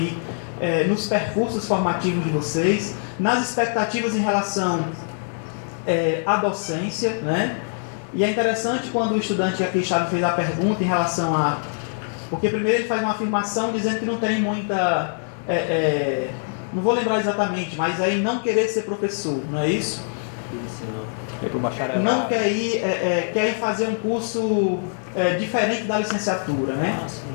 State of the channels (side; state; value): right; silent; 63 dB below the other